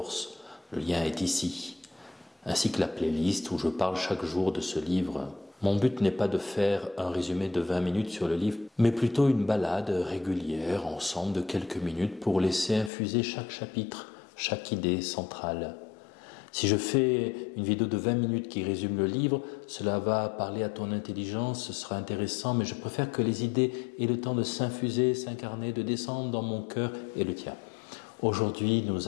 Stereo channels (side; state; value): right; drops out; at 12.9 s